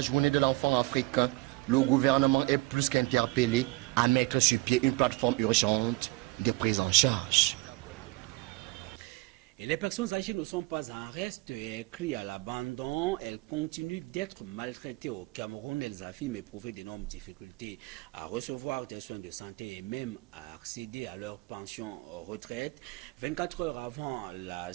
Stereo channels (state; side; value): quieter; left; 21.3 dB